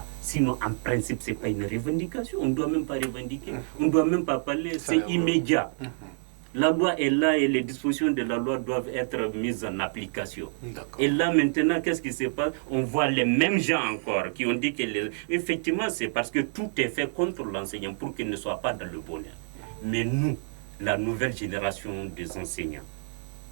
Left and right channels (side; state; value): left; silent; 57 dB below the other